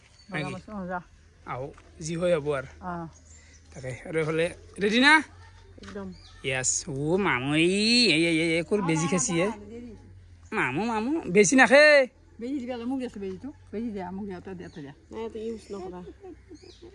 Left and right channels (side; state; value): both; identical; correlation 1.00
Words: আহো যি হয় হ'ব আৰু তাকে আৰু এফালে ৰেডি না একদম ইয়াস ও মামু এই কোৰ বেজি খাইছি মামু বেছি নাখে বেজি দিবা মোক দিছো বেজিটো বেজি দিয়া মোক দিয়াতে দিয়াতে দিয়া নাই তো ইউজ নকৰা